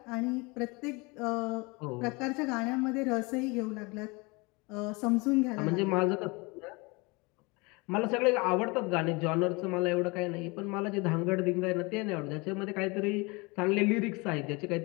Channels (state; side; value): quieter; right; 26.8 dB